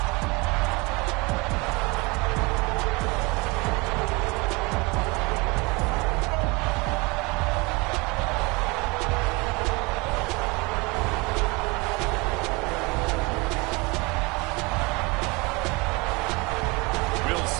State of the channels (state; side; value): quieter; left; 26.4 dB